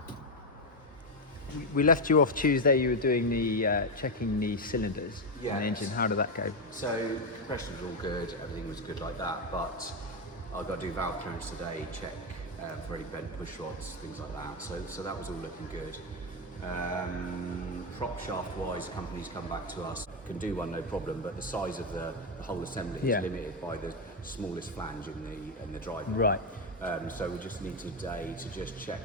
We left you off Tuesday. You were doing the checking the cylinders and the engine. How did that go? So compression was all good, everything was good like that, but I've got to do valve clearance today, check for any bent push rods, things like that. So that was all looking good. Propshaft wise, companies come back to us, can do one no problem, but the size of the whole assembly is limited by the smallest flange in the drive. Right. So we just need today to just check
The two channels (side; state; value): both; normal; correlation 0.07